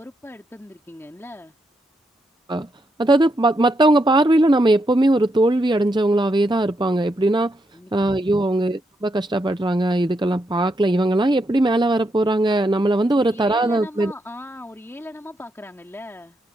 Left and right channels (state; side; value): normal; both; correlation 0.80